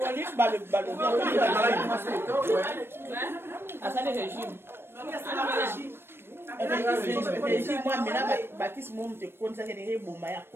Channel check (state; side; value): late; left; 0.11 ms